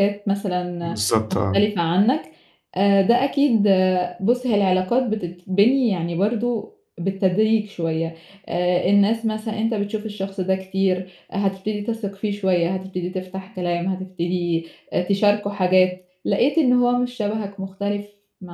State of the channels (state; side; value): identical; both; correlation 1.00